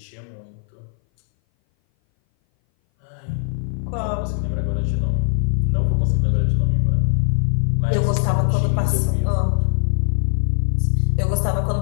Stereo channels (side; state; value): right; silent; 59 dB below the other